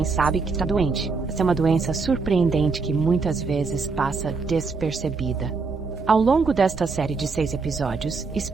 sabe que está doente? Essa é uma doença surpreendente que muitas vezes passa despercebida. Ao longo desta série de 6 episódios,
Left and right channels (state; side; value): quieter; left; 4.5 dB